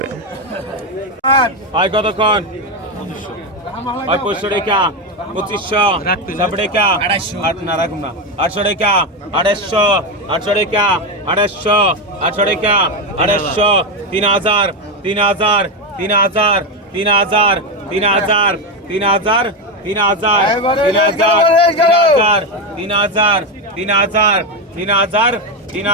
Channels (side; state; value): both; normal; correlation 0.11